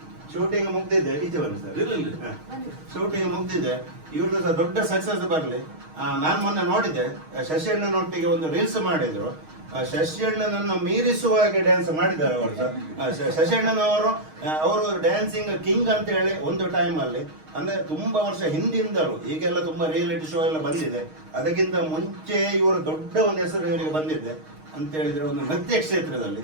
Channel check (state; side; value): late; left; 6.4 ms